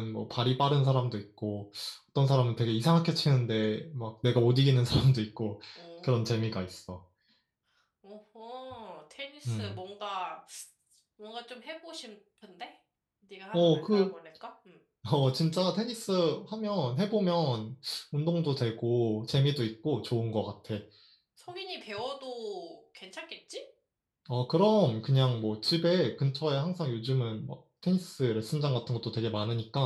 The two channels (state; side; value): identical; both; correlation 1.00